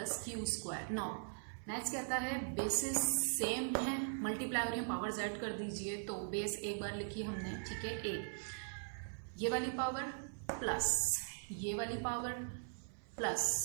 Q square. Now next कहता है बेसिस सेम है, मल्टीप्लाई हो रही है, पावर्स ऐड कर दीजिए। तो बेस एक बार लिखी हमने, ठीक है, ए, ये वाली पावर प्लस ये वाली पावर प्लस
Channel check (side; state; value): left; silent; 51 dB below the other